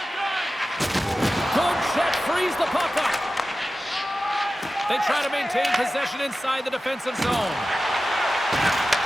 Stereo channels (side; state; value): both; normal; correlation 0.94